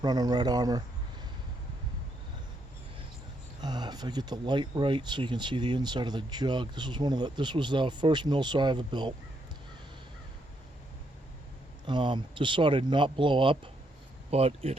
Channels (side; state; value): both; normal; correlation 0.76